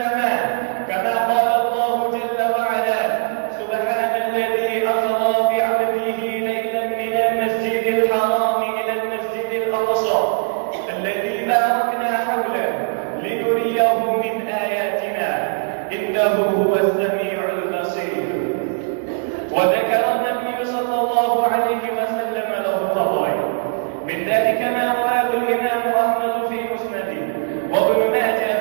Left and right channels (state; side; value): silent; left; 61 dB below the other